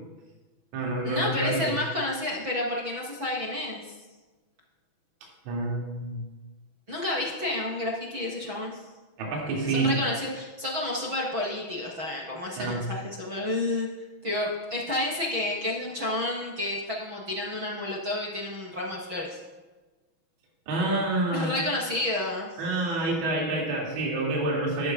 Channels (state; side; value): late; left; 6.1 ms